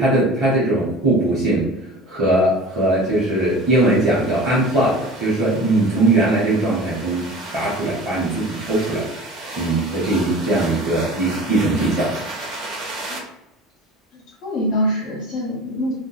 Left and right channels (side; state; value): both; normal; correlation 0.39